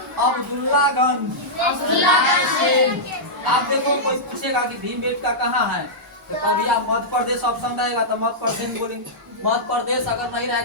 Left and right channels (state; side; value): normal; both; correlation -0.11